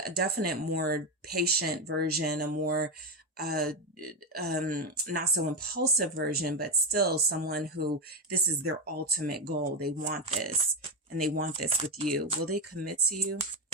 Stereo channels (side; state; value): both; normal; correlation 0.13